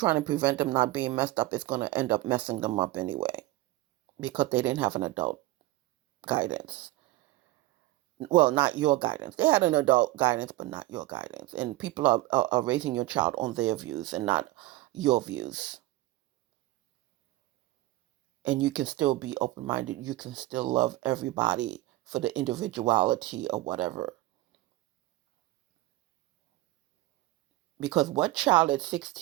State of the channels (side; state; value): left; quieter; 17.9 dB